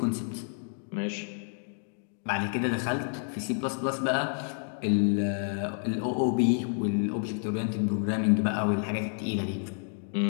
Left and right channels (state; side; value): silent; right; 58 dB below the other